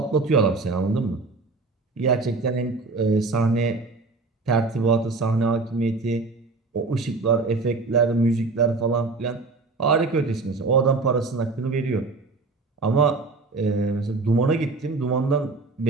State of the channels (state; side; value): quieter; left; 3.8 dB